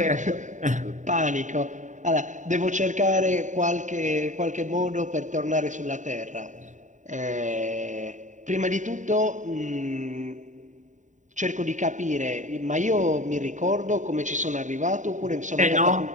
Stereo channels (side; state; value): left; late; 0.36 ms